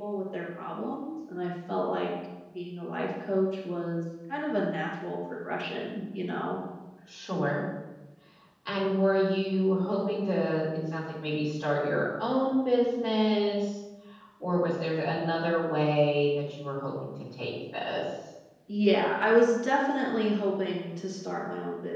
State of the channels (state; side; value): identical; both; correlation 1.00